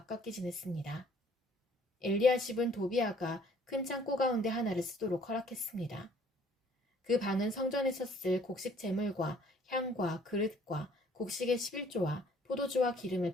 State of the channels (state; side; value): normal; both; correlation 0.58